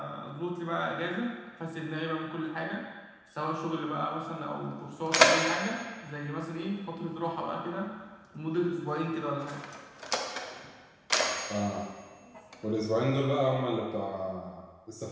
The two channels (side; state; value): both; identical; correlation 1.00